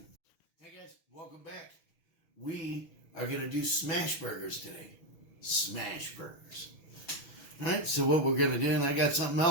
Hey guys, welcome back. We are going to do smash burgers today. Smash burgers. Alright, so what we're going to do, and I got something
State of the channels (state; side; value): late; right; 6.3 ms